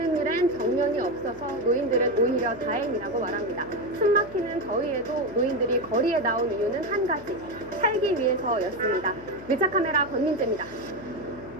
일엔 정년이 없어서 노인들은 오히려 다행이라고 말합니다. 숨막히는 더위에도 노인들이 거리에 나온 이유는 한 가지, 살기 위해서였습니다. 밀착카메라 권민재입니다.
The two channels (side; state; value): left; noise; hum, 17 dB below the sound